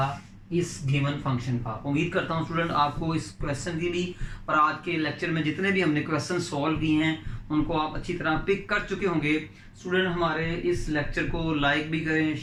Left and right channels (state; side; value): identical; both; correlation 1.00